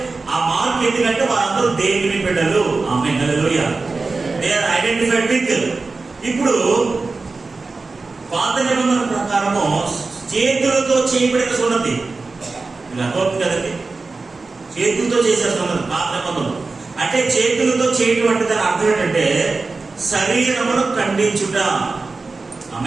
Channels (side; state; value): left; quieter; 3.9 dB